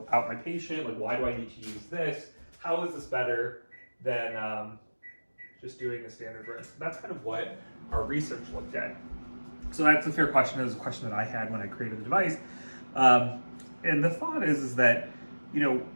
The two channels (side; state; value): both; inverted; correlation -1.00